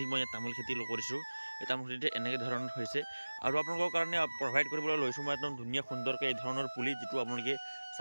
মই ইয়াত তামোল খেতি কৰিছোঁ। এই তামোল খেতিতে এনেকৈ ধৰণৰ হৈছে। আৰু আপোনালোকৰ কাৰণে প্ৰভাইড কৰিবলৈ লৈছোঁ মই একদম ধুনীয়া সুন্দৰকৈ এই ধৰণৰ পুলি, যিটো আপোনালোকে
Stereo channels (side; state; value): both; inverted; correlation -1.00